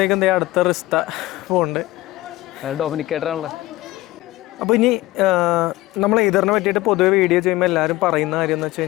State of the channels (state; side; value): quieter; right; 18.2 dB